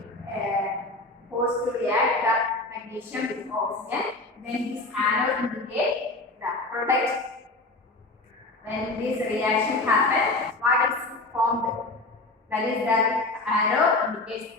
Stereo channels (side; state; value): right; quieter; 3.0 dB